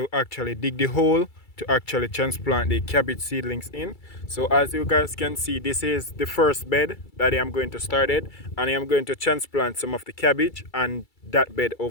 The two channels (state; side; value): late; right; 2.3 ms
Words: actually dig the hole to actually transplant the cabbage seedlings in. So as you guys can see, this is the first bed that I am going to start it, and I am going to transplant some of the cabbage and that bed